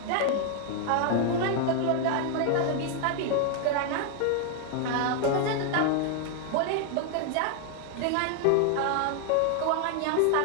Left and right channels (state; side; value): different; both; correlation 0.00